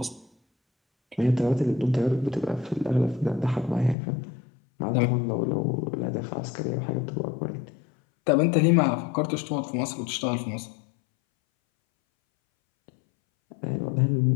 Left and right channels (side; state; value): right; drops out; at 4.0 s